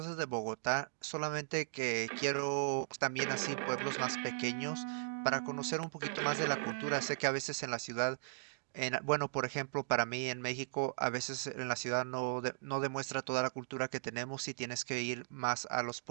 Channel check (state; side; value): silent; left; digital silence